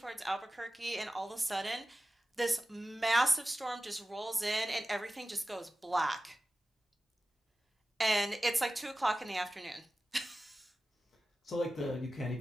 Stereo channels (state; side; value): normal; both; correlation 0.95